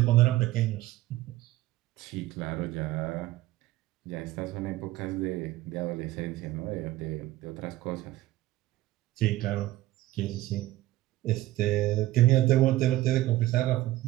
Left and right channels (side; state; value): left; quieter; 16.3 dB